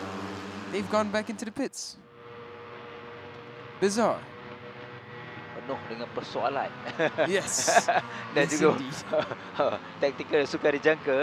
they've gone back into the pits. Bizarre. Penuh dengan persoalan. Yes. Dan yes, juga indeed. taktikal sukar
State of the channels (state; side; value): identical; both; correlation 1.00